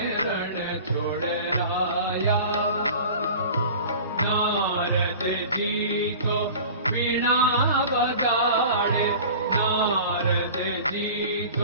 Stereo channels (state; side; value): inverted; both; correlation -0.39